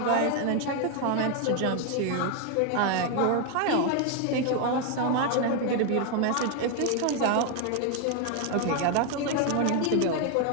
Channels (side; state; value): both; different; correlation 0.01